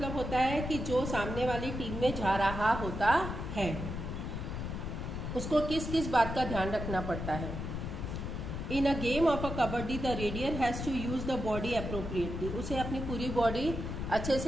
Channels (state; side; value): noise; left; rumble, 5 dB below the sound